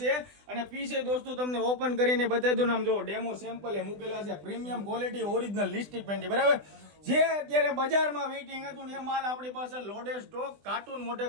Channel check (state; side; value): late; left; 20 ms